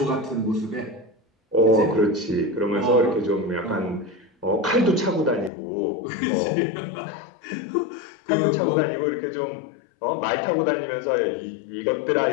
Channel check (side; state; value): right; drops out; at 5.5 s